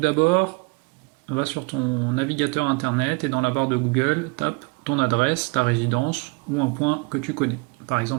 va sur ton navigateur internet et dans la barre de Google, tape ton adresse, ta résidence ou un point que tu connais. Par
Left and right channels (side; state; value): left; quieter; 28.0 dB